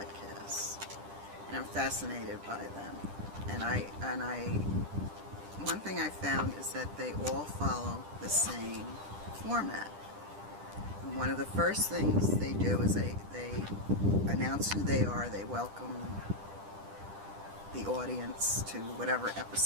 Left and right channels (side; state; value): left; late; 10 ms